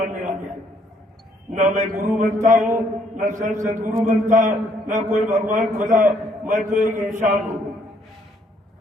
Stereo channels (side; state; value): both; normal; correlation 0.67